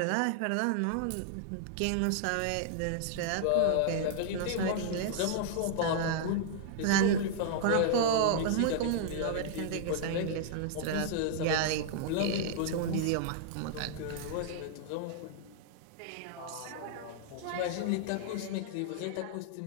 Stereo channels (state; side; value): different; both; correlation -0.01